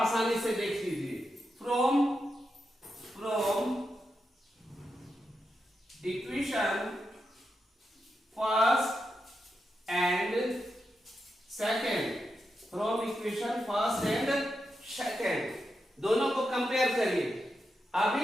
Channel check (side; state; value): both; normal; correlation 0.87